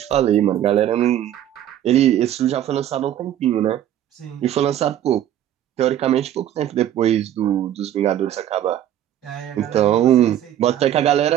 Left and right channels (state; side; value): quieter; left; 11.4 dB